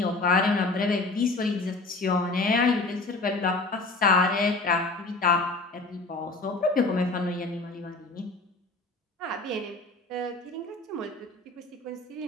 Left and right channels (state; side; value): quieter; right; 3.4 dB